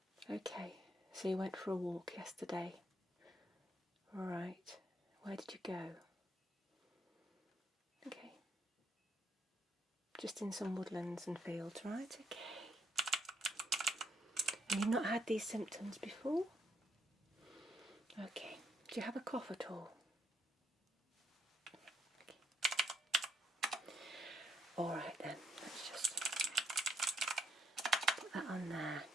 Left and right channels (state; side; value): normal; both; correlation 0.75